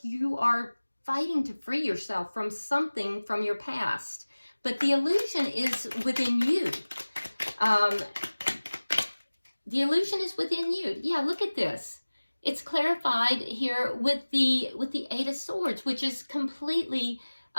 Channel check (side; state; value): both; inverted; correlation -1.00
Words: you are fighting to free yourself from something from your past, but the illusion is within you. The illusion is within you. Yeah, look at this. It's clarified here with the Eight of Swords, which is completely